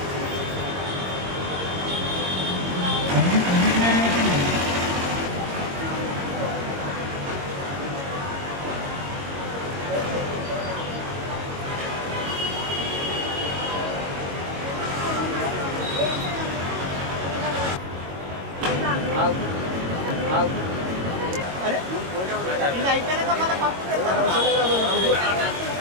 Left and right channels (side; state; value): left; late; 22 ms